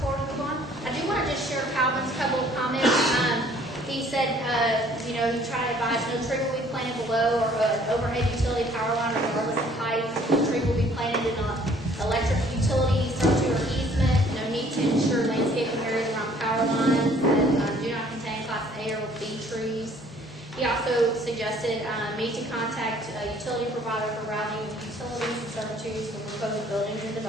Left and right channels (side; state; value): both; normal; correlation 0.58